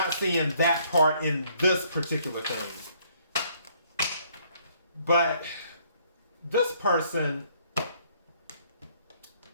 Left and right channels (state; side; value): inverted; both; correlation -0.65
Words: seeing that part in this particular thing. But this person,